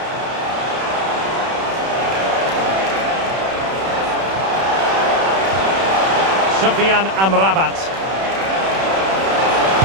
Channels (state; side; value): late; left; 31 ms